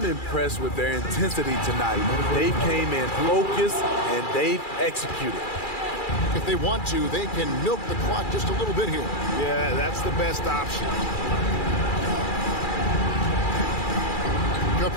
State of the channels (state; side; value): late; right; 2.4 ms